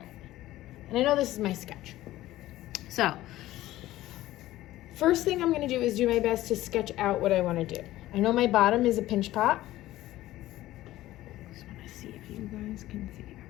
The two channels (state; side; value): quieter; right; 15.6 dB